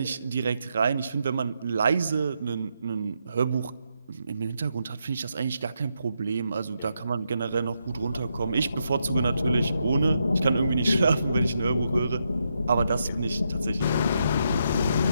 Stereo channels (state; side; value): inverted; both; correlation -0.81